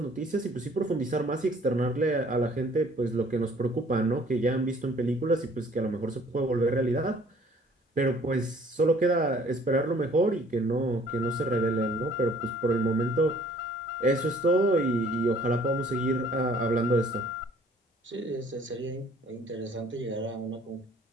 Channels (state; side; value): normal; both; correlation 0.56